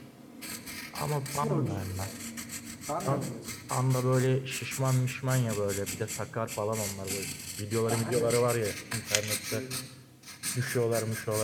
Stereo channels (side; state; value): both; identical; correlation 1.00